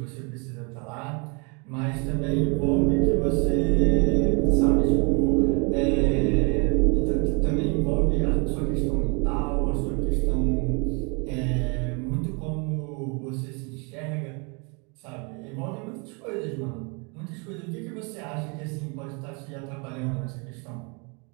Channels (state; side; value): quieter; left; 33.1 dB